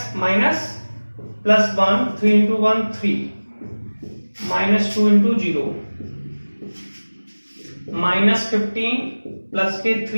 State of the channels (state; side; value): inverted; both; correlation -1.00